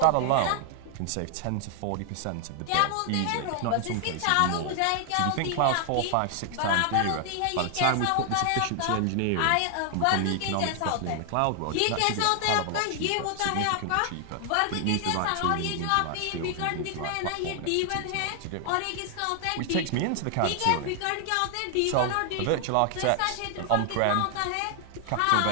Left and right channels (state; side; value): different; both; correlation 0.00